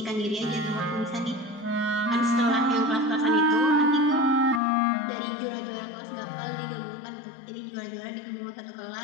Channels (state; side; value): drops out; right; at 4.6 s